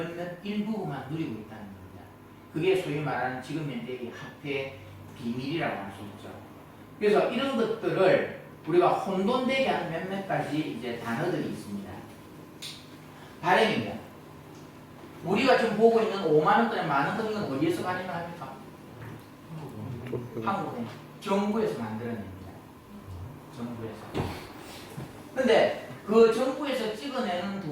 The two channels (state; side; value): identical; both; correlation 1.00